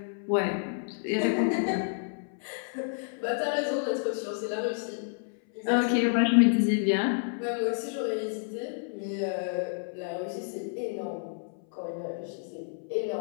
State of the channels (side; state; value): right; silent; 58 dB below the other